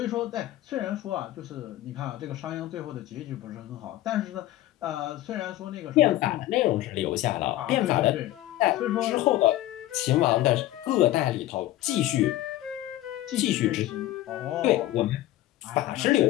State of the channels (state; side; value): quieter; right; 15.1 dB